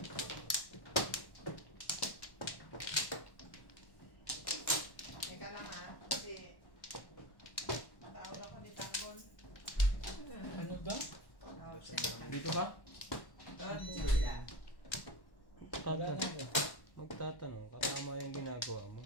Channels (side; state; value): right; late; 1.1 ms